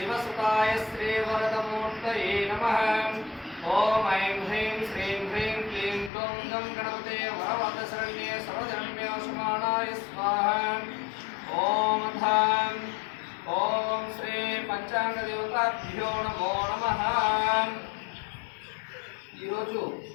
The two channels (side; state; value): right; drops out; at 6.1 s